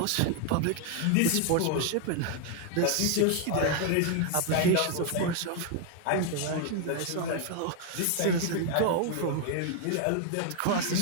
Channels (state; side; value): different; both; correlation 0.00